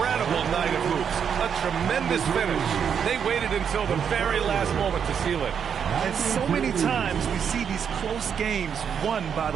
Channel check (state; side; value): quieter; left; 7.5 dB